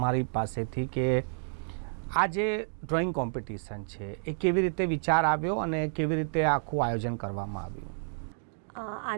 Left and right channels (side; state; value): left; silent; digital silence